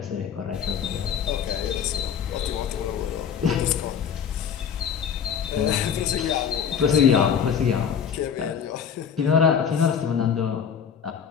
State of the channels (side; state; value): right; quieter; 7.6 dB